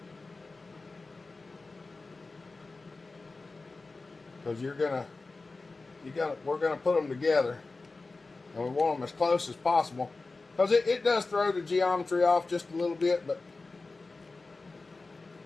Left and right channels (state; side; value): quieter; right; 3.6 dB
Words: Because we're gonna put them together, and we want them as close as possible. Because it does throw the geometry off just a little bit, but